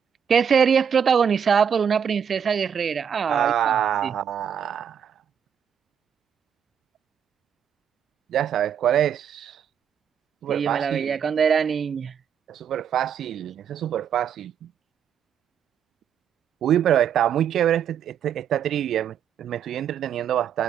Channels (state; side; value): quieter; left; 8.0 dB